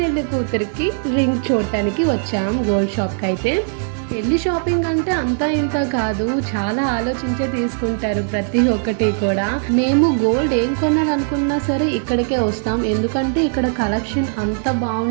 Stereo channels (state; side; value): silent; left; 64 dB below the other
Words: కూతురికి రింగ్ చూడటానికి వచ్చాం గోల్డ్ షాప్కి. అయితే పెళ్లి షాపింగ్ అంటే అంతా ఇంత కాదు, చాలా ఆలోచించే తీసుకుంటారు ప్రతి ఒక్కటి కూడా. మేము గోల్డ్ ఏం కొనాలనుకున్నా సరే ఇక్కడికే వస్తాం, ఎందుకంటే ఇక్కడ కలెక్షన్ అంత